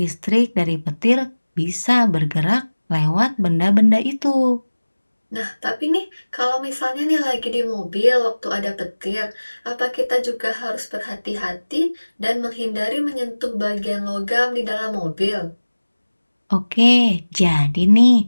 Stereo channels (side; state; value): both; inverted; correlation -1.00